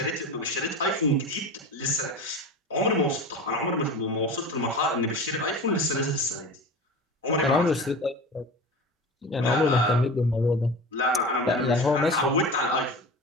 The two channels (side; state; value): both; normal; correlation 0.31